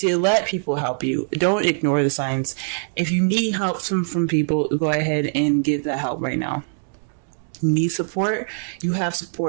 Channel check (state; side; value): silent; left; digital silence